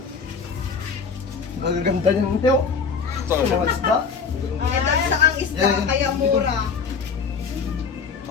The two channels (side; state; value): right; quieter; 5.5 dB